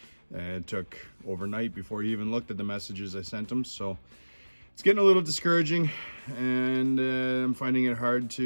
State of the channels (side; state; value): both; inverted; correlation -1.00